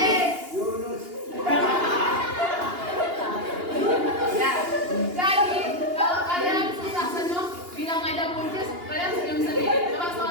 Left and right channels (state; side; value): late; left; 2.8 ms